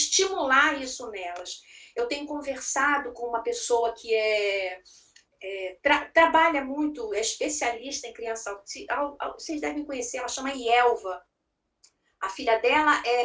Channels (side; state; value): both; identical; correlation 1.00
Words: isso nelas. Eu tenho conversado com uma pessoa que trabalha muito, é especialista em criança autista, vocês devem conhecer, ela chama Ielva. A filha dela